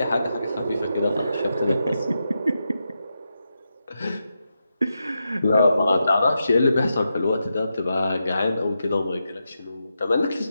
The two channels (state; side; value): inverted; both; correlation -0.87